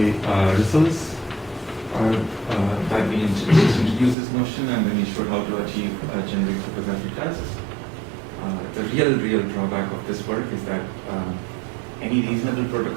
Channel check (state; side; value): drops out; left; at 4.2 s